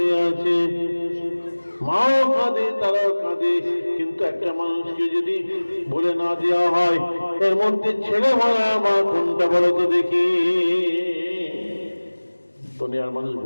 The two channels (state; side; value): inverted; both; correlation -1.00